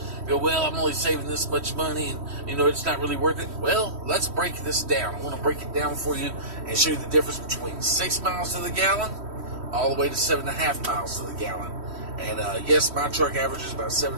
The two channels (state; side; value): late; left; 3.1 ms